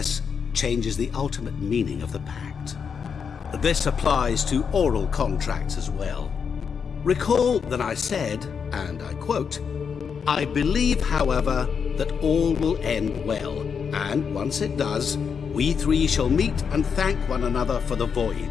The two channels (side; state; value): right; quieter; 6.4 dB